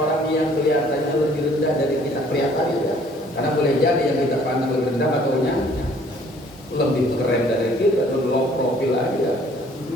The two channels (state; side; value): normal; both; correlation 0.58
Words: yang kelihatannya lebih rendah dari kita kelihatannya ya. Karena boleh jadi yang kita pandang lebih rendah ataunya lebih keren dari kita, atau low profil aja.